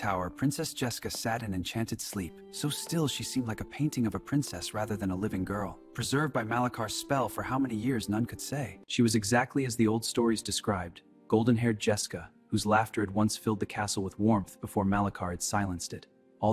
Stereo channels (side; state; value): both; identical; correlation 1.00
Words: Princess Jessica sat in enchanted sleep. So still, she seemed like a painting of a princess rather than a living girl, preserved by Malakar's spell for how many years none could say. She was exactly as the old stories described, golden-haired Jessica, whose laughter had once filled the castle with warmth before Malakar had silenced it.